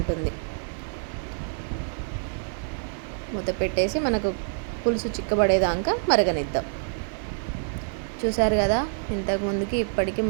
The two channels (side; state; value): left; silent; 61 dB below the other